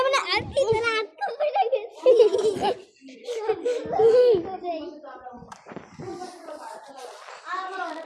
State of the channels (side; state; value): both; identical; correlation 1.00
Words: মানে আর কি না আটকে পড়ে গেছি